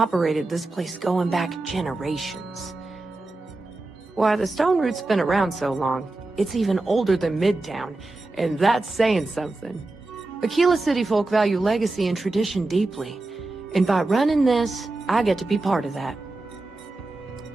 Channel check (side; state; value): left; quieter; 3.0 dB